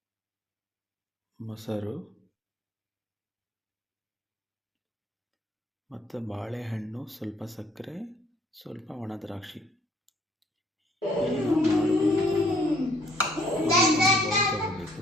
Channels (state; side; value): normal; both; correlation 0.62